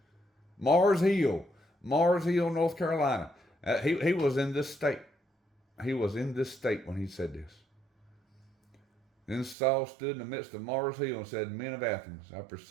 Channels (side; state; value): left; drops out; at 9.6 s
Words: Mars Hill, North Carolina. He was in this state. He was in this state when he said this. Then Saul stood in the midst of Mars Hill and said, Men of Athens, I